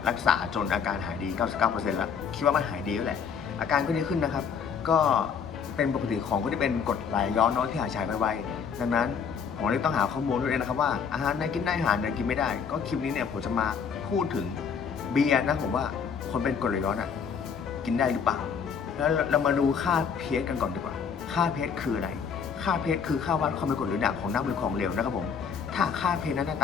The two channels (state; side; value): quieter; right; 6.6 dB